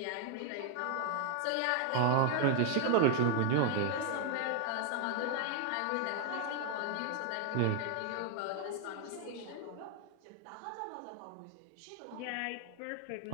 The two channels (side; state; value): both; different; correlation 0.00